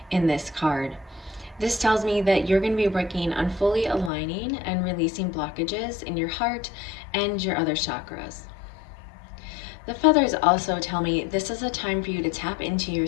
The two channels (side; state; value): right; drops out; at 4.1 s